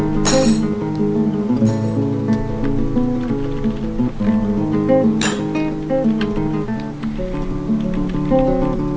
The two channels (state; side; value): identical; both; correlation 1.00